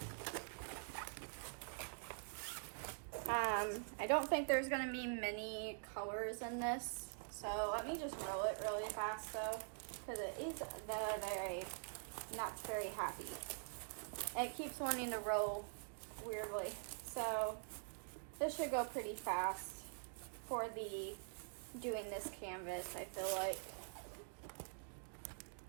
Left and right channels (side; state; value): left; silent; digital silence